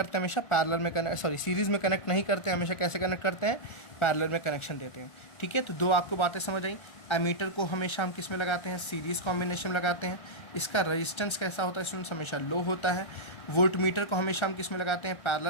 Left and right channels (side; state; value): right; late; 1.3 ms